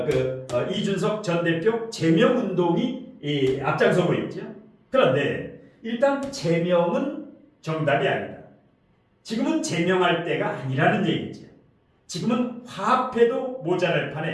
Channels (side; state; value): both; identical; correlation 1.00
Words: 전 대표 제명 운동이 앞장서고 있죠. 그런데 일단 제명은 정답이 아니다. 지금은 제명할 때가 아니라는 얘기죠. 지금은 화합해도 모자랄